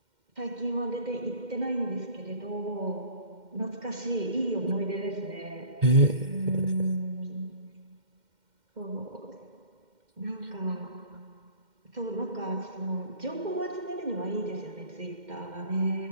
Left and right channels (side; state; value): left; late; 2.1 ms